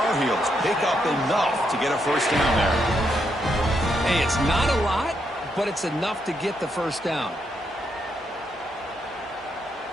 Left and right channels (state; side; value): normal; both; correlation 0.79